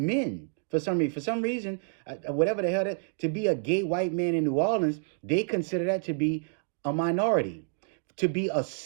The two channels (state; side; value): silent; left; 59 dB below the other